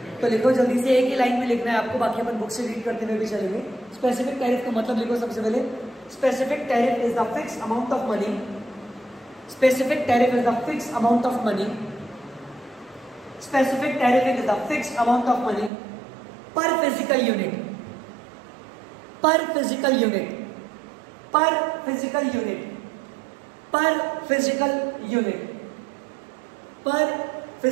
तो लिखो जल्दी से, एक ही लाइन में लिखना है आपको, बाकी अपन बुक से रीड करते हुए भी चलेंगे। स्पेसिफिक टैरिफ का मतलब लिखो सबसे पहले। Specific tariff is the fix amount of money. Specific tariff is the fix amount of money. Specific tariff is the fix amount of money पर फिजिकल यूनिट, पर फिजिकल यूनिट, पर फिजिकल यूनिट, पर physical unit, पर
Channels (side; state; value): left; drops out; at 15.7 s